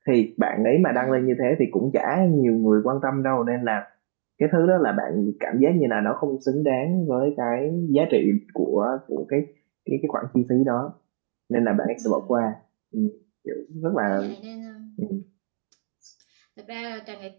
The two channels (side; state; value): left; silent; digital silence